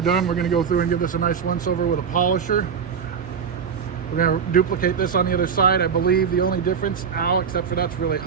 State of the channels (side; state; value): left; quieter; 6.8 dB